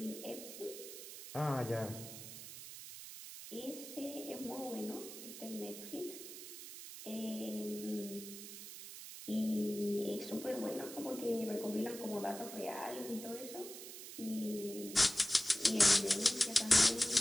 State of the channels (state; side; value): noise; right; hiss, 11 dB below the sound